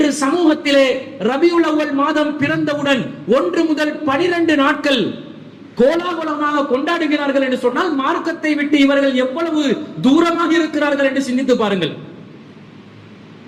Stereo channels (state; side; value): identical; both; correlation 1.00